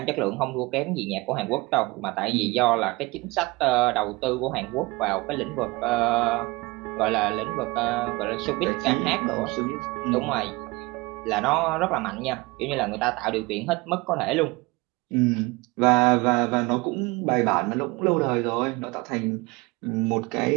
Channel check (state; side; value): quieter; left; 23.8 dB